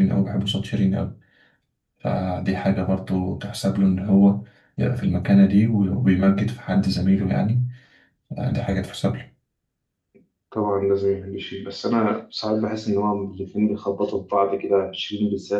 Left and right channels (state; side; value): identical; both; correlation 1.00